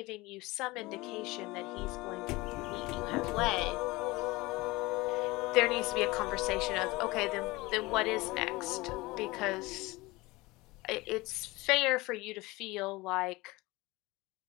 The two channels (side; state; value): right; quieter; 21.7 dB